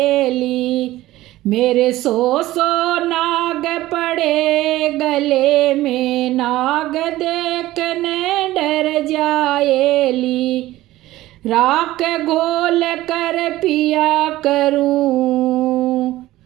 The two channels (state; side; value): quieter; left; 16.3 dB